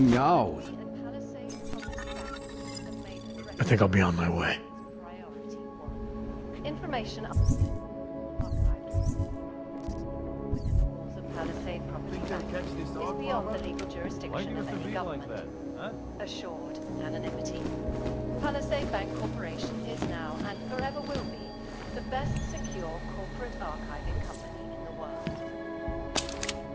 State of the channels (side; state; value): both; identical; correlation 1.00